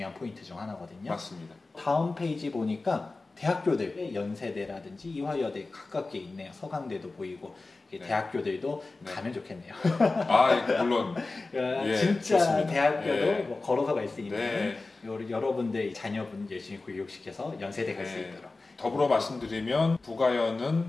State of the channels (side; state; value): right; quieter; 3.5 dB